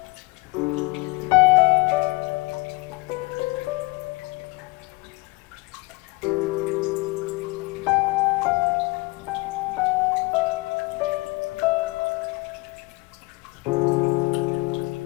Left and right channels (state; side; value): quieter; right; 24.2 dB